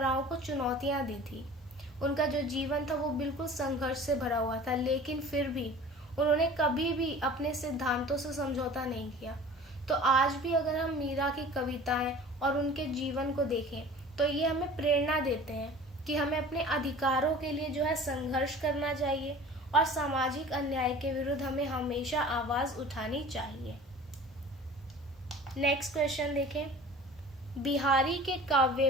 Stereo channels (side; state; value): both; normal; correlation 0.42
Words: को चुनौतियां दी थी। उनका जो जीवन था वो बिल्कुल संघर्ष से भरा हुआ था, लेकिन फिर भी उन्होंने कभी भी अपने सिद्धांतों से समझौता नहीं किया। तो आज भी अगर हम मीरा की कविताएं और उनके जीवन को देखें तो ये हमें प्रेरणा देते हैं कि हमें अपने अधिकारों के लिए जो है संघर्ष करना चाहिए और सामाजिक अन्याय के विरुद्ध हमें हमेशा आवाज उठानी चाहिए। नेक्स्ट क्वेश्चन देखें, बिहारी के काव्य